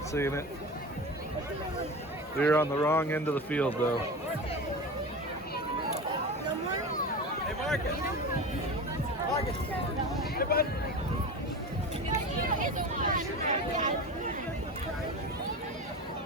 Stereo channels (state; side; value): normal; both; correlation 0.28